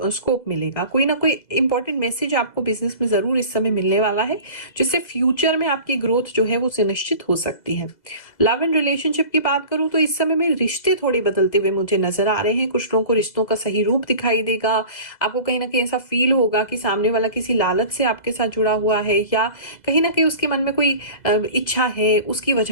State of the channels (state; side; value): late; right; 2.0 ms